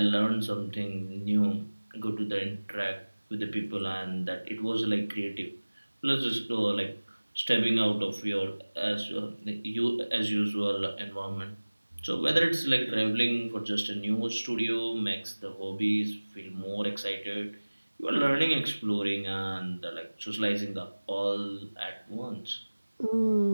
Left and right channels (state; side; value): inverted; both; correlation -1.00